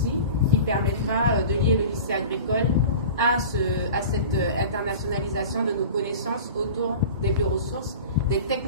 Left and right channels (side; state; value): both; inverted; correlation -0.36